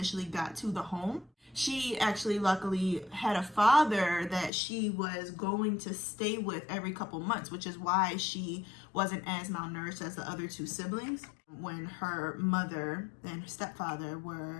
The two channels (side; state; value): right; drops out; at 4.5 s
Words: got to the home, she actually luckily had a father that she was going to stay with every couple months, which is why she wasn't as malnourished as the other two siblings. When her mother and her stepfather